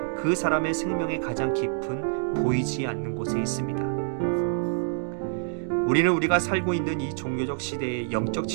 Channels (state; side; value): silent; left; digital silence